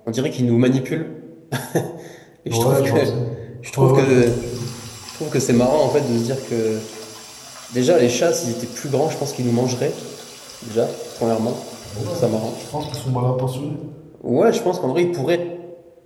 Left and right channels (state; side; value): identical; both; correlation 1.00